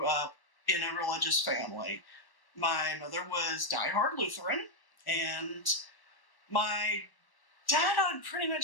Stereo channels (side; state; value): right; late; 1.1 ms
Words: up in a religious family. My mother was diehard Lutheran, and my dad, I would pretty